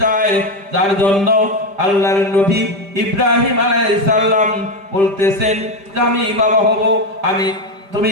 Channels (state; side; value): late; left; 5.0 ms